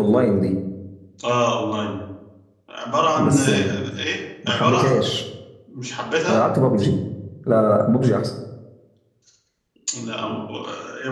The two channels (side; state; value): both; identical; correlation 1.00